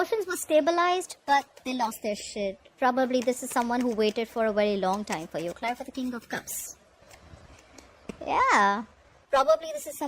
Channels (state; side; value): identical; both; correlation 1.00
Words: were stabilized, but they lost their shit. Probably this is someone who waited for a very long time for you. Clarify the King of Cups. Yeah. Probably this is